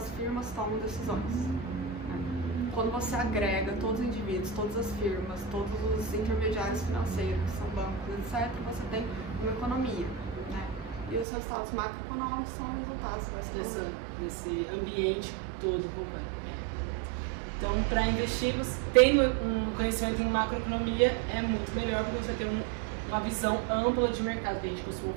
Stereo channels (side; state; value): left; drops out; at 11.2 s